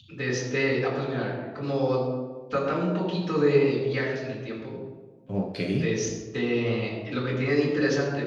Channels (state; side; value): identical; both; correlation 1.00